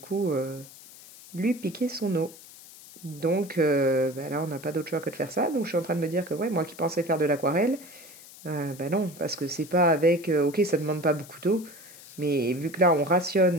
lui piquer son eau. Donc bah là, on n'a pas d'autre choix que de faire ça. Donc je suis en train de me dire que ouais, moi qui pensais faire de l'aquarelle, bah non, parce que c'est pas avec... ok, ça demande pas beaucoup d'eau, mais vu que là, on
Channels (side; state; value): left; noise; hiss, 19 dB below the sound